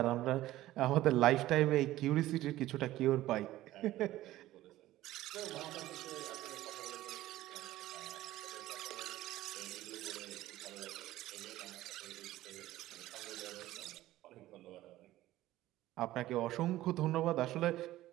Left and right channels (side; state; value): left; quieter; 15.5 dB